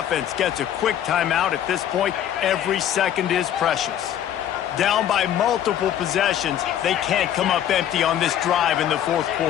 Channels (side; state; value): right; quieter; 10.6 dB